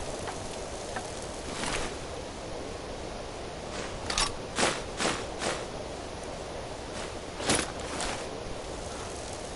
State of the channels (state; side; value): identical; both; correlation 1.00